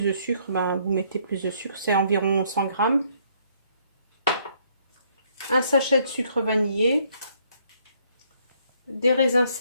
sucre, ben, vous mettez plus de sucre. C'est environ 100 grammes. Un sachet de sucre vanillé. Des raisins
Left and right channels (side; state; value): both; inverted; correlation -0.67